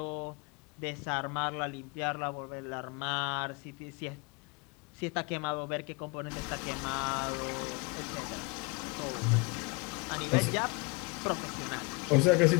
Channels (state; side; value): quieter; right; 29.0 dB